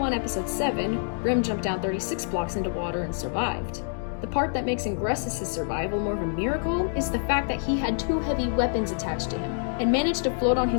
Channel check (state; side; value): silent; right; digital silence